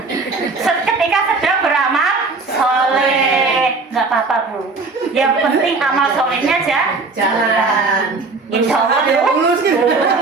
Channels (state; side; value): quieter; left; 3.9 dB